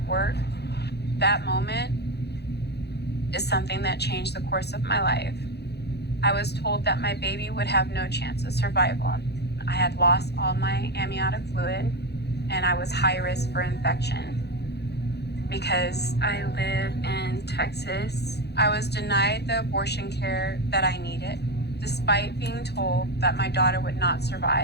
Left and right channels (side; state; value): right; late; 0.48 ms